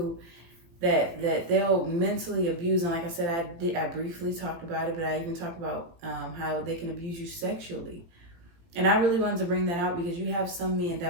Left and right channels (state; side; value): late; left; 18 ms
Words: that they'll mentally abuse. And like I said, I briefly talked about it, but I even talked about how they can abuse you sexually. And I really wanted to bring that out because you have some men